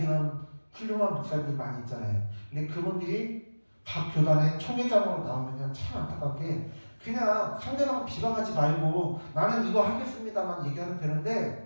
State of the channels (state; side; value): inverted; both; correlation -1.00